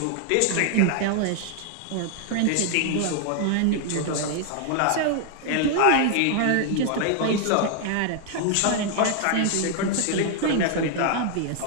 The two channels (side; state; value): both; different; correlation 0.00